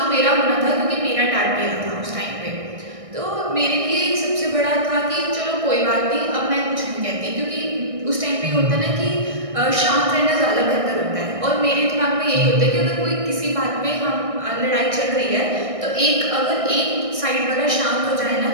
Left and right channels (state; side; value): late; left; 1.6 ms